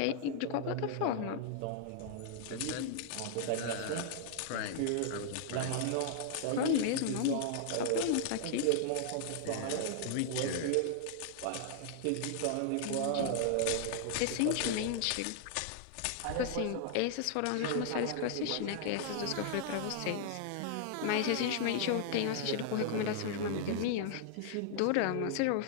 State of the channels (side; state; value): both; different; correlation -0.01